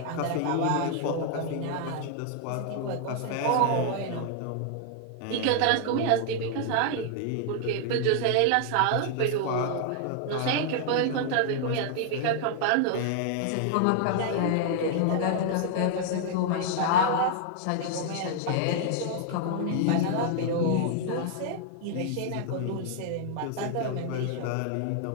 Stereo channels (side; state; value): both; different; correlation 0.00